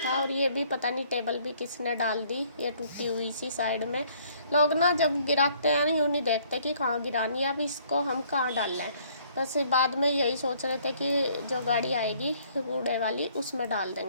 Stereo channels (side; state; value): both; inverted; correlation -0.61